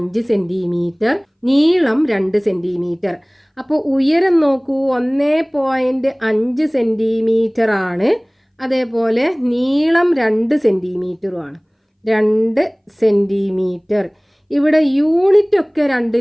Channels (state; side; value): identical; both; correlation 1.00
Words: സെൻറ്റിമീറ്റർ, നീളം 2 സെൻറ്റിമീറ്റർ. അപ്പോൾ ഉയരം നോക്കൂ, 1.5 സെൻറ്റിമീറ്റർ ആണ്, അതേപോലെ നീളം 2 സെൻറ്റിമീറ്ററുമാണ്. 2 സെൻറ്റിമീറ്റർ. ഇവിടെ യൂണിറ്റ് ഒക്കെ